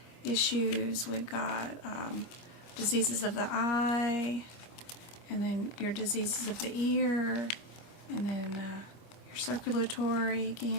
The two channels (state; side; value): late; right; 25 ms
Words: issues. We've got diseases of the eye, and then your diseases of the ear, and then your circulatory